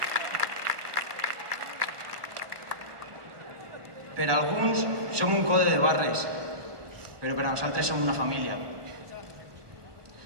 Per alguns som un code de barres, però per a nosaltres som una família.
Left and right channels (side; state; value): left; late; 1.3 ms